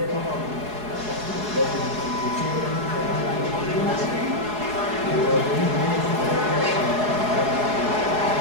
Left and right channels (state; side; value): late; left; 4.8 ms